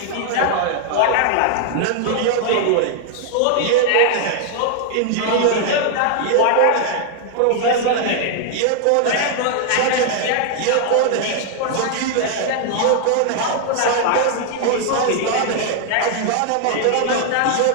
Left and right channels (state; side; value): different; both; correlation 0.00